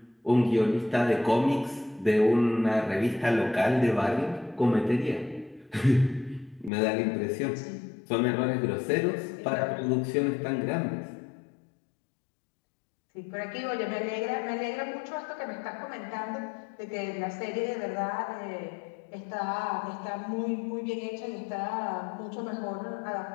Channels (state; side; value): drops out; right; at 6.7 s